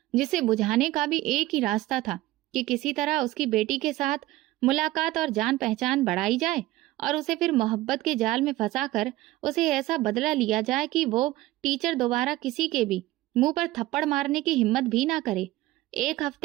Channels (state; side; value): quieter; left; 17.1 dB